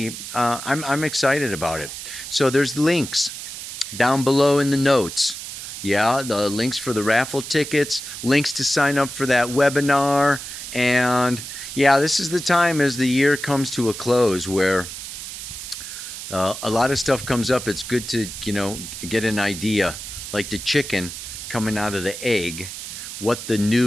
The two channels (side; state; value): right; noise; hiss, 9 dB below the sound